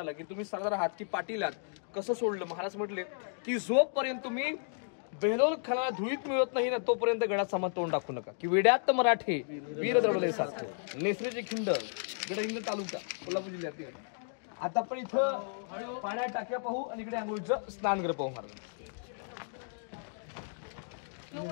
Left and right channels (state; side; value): silent; right; digital silence